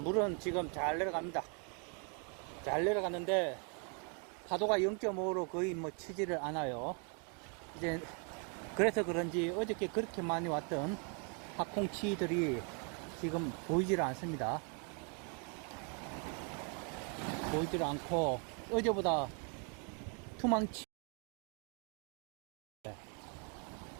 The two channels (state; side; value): quieter; left; 38.2 dB